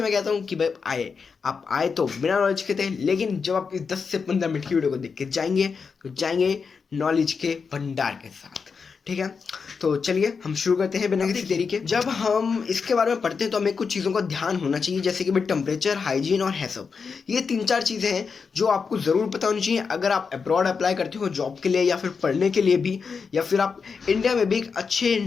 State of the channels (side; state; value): right; quieter; 5.5 dB